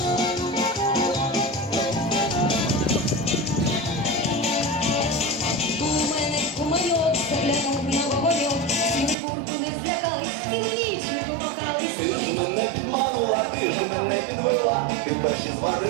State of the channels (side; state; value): left; drops out; at 9.2 s